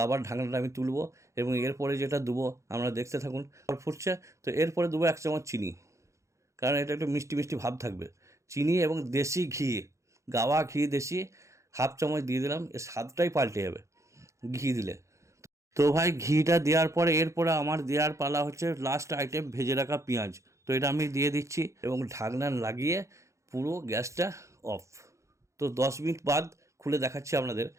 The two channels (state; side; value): late; left; 0.15 ms